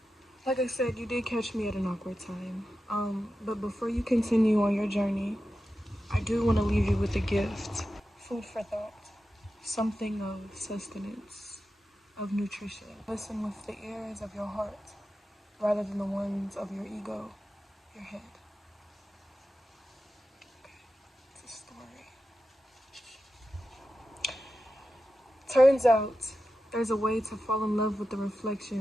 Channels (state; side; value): normal; both; correlation 0.91